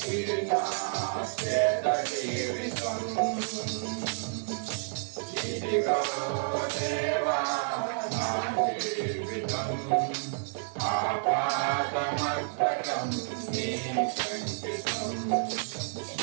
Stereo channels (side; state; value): left; silent; digital silence